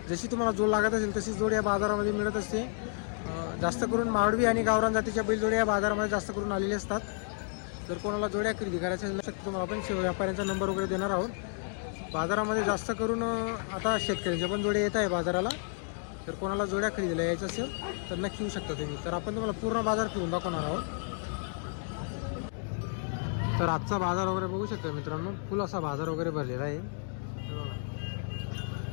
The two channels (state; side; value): silent; right; 57 dB below the other